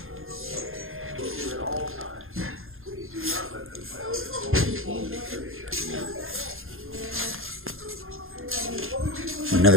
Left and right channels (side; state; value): left; late; 0.60 ms